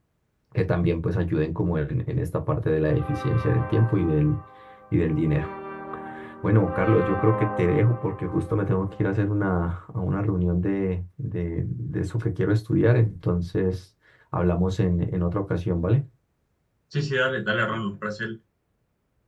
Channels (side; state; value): both; identical; correlation 1.00